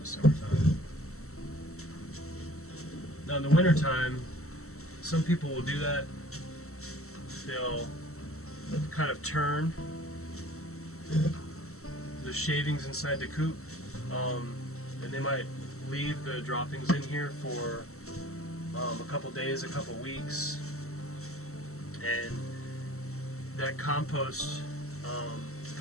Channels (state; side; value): late; right; 0.63 ms